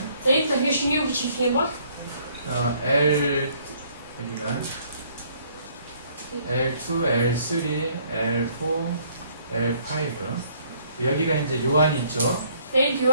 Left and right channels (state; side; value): inverted; both; correlation -0.63